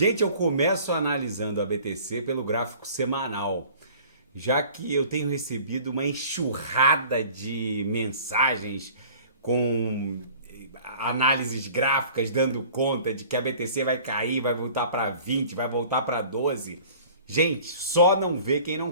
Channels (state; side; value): inverted; both; correlation -0.47